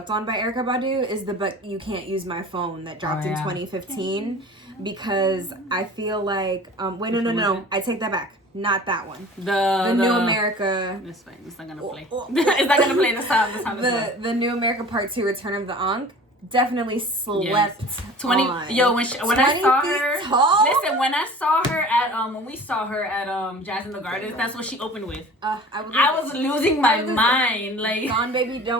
on by Erykah Badu is the "But You Can't Use My Phone" that dropped in 2015. Because I feel wait, no, I take that back. Not that one. The New America. It's fine. It's not gonna play. It's not gonna play the sound. The New America Part 2: Return of the Ankh. definitely slept 20 on. yo when I 20 saw feet her tall? listen when I saw her at when we saw her at Jazz in the Gardens, that's what she opened with. I was losing my mind. Like Gone Baby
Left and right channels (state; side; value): normal; both; correlation 0.42